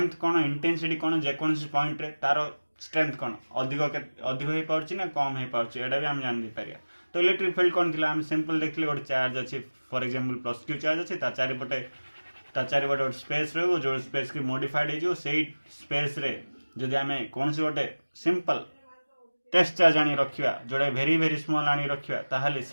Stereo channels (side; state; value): both; inverted; correlation -1.00